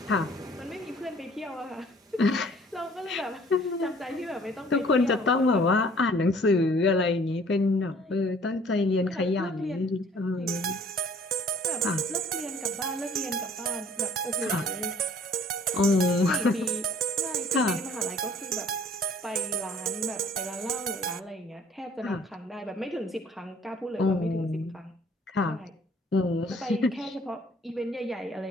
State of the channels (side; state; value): both; normal; correlation 0.55